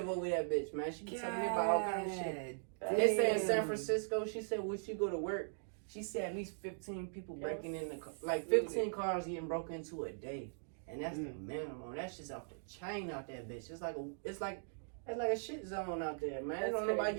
over that bitch, man. She be telling me about all kind of shit. They say in San Damn. Francisco, she said when she go to work, she said at least 15 people breaking in the car. Like 15 cars getting broken into a day. And that's the minimum. That's just off the chain out there, bitch. It's like a shit zone out there, man. That's Don't nobody crazy.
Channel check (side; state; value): left; silent; digital silence